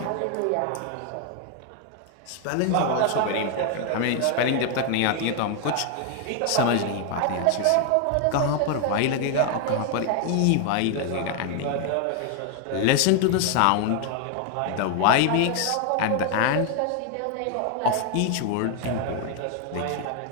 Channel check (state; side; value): different; both; correlation 0.00